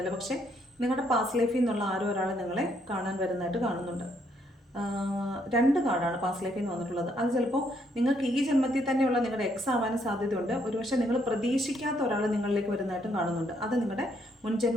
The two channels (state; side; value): normal; both; correlation 0.71